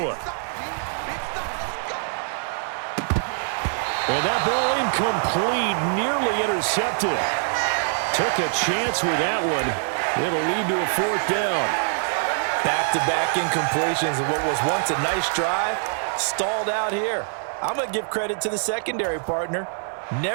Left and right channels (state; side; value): silent; left; 55 dB below the other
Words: And that ball incomplete, nearly intercepted. Took a chance with that one. It'll lead to a 4th down. Back-to-back incompletions of what was once a nice drive, stalled out here. I'm going to give credit to the secondary partner.